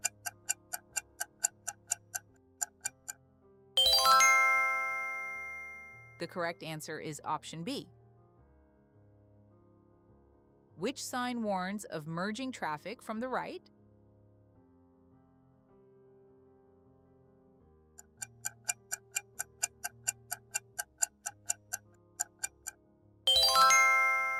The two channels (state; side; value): identical; both; correlation 1.00